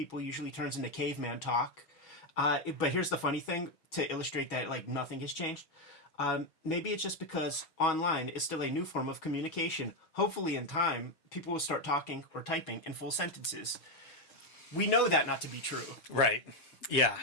Usually turns into caveman talk. But here's the funny thing to illustrate that, like, nothing has changed. Maybe it's just because online is still a new form of communication. Hopefully, in time, people will start talking or typing in full sentences. We know that not to be true. Right. Yeah.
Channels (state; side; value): late; right; 6.3 ms